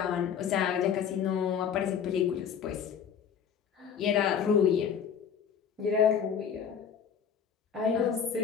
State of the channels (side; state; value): right; quieter; 7.7 dB